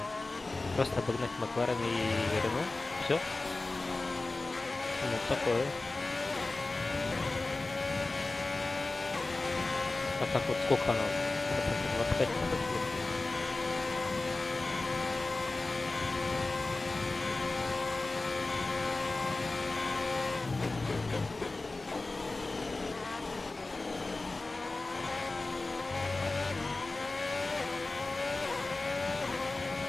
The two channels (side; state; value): right; quieter; 3.2 dB